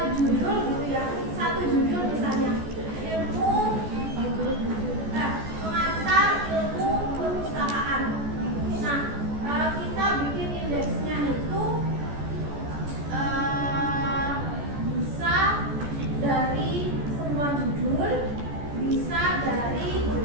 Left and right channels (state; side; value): late; left; 14 ms